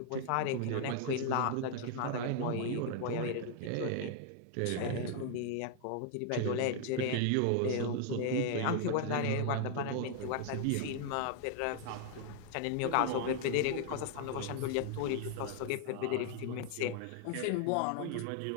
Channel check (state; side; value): different; both; correlation 0.00